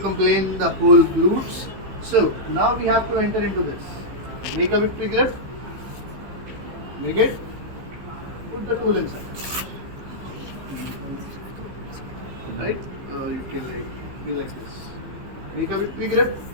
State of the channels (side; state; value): left; late; 15 ms